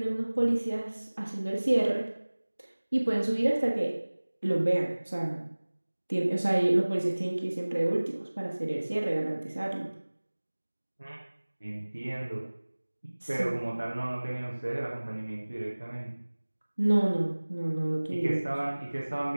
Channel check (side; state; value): both; inverted; correlation -1.00